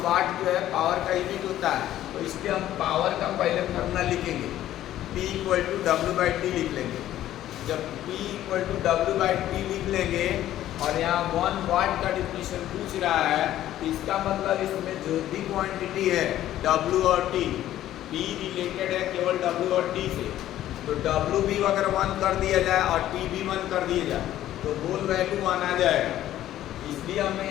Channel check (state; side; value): quieter; right; 13.0 dB